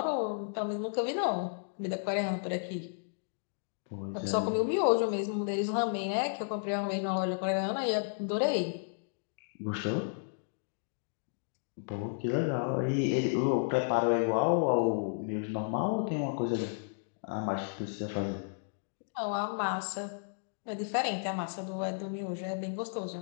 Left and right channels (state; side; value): silent; right; digital silence